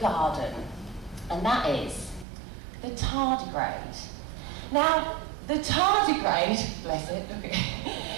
garden. And that is the tardigrade. Now, the tardigrade, bless it, look at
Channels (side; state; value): left; drops out; at 2.2 s